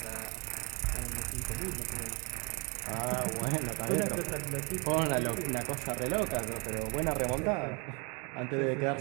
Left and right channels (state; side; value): quieter; left; 29.6 dB